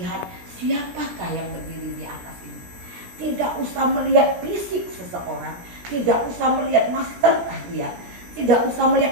siapakah yang berdiri di atas ini. Tidak usah melihat fisik seseorang. Tidak usah melihat masterkah dia. Tidak usah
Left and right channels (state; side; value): late; left; 17 ms